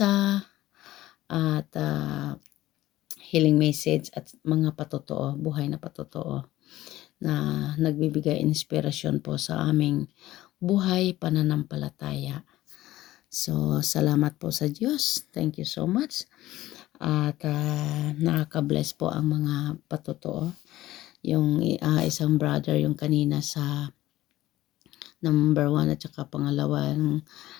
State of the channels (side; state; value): right; quieter; 15.7 dB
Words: at healing message at mga patotoo, buhay na patotoo na nagbibigay inspirasyon po sa aming buhay pananampalataya. So, salamat po sa Diyos. Thank you so much. At nakaka-bless po ang mga patotoo. Yung isang brother, yung kanina sa number 1 at saka pangalawang